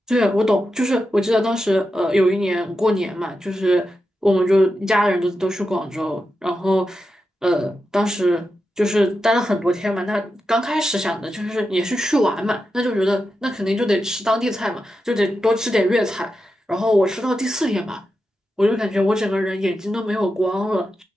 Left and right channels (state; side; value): normal; both; correlation 0.89